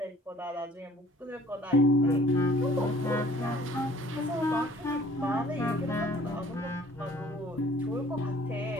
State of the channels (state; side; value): normal; both; correlation 0.54